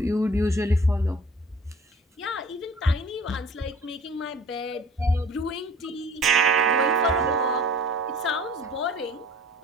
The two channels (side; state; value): both; normal; correlation 0.46